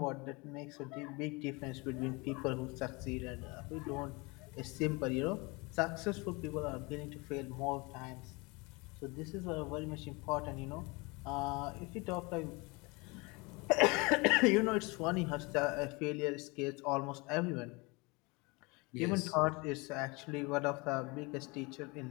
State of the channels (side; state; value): right; quieter; 26.7 dB